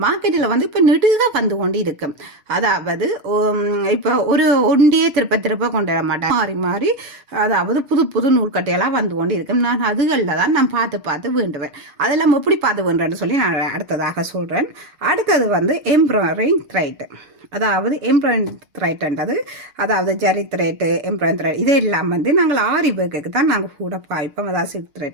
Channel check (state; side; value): late; left; 6.5 ms